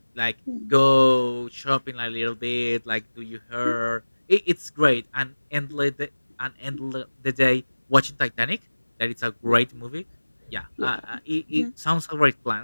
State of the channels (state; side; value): inverted; both; correlation -1.00